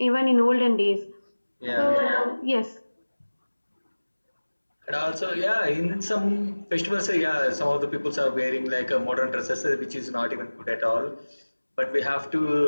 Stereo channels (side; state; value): both; inverted; correlation -1.00